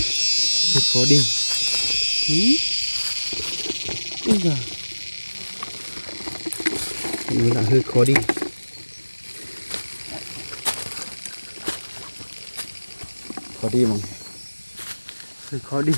Hơi khó đi. Ui giời, nó là hơi khó đi. Khó đi mà hơi khó đi.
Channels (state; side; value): inverted; both; correlation -1.00